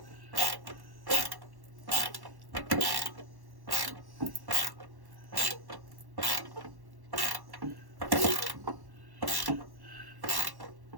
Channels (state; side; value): late; left; 1.1 ms